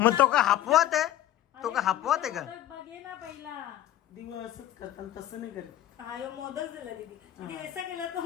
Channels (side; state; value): right; quieter; 12.7 dB